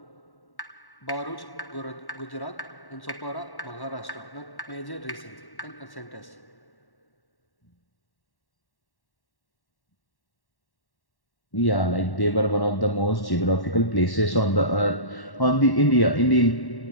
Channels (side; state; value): right; late; 1.1 ms